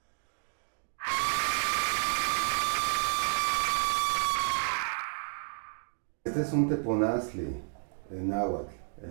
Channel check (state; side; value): silent; left; digital silence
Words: Este es un teponazli en náhuatl,